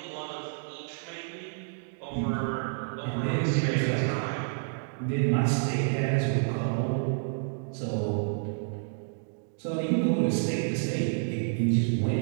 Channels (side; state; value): left; silent; digital silence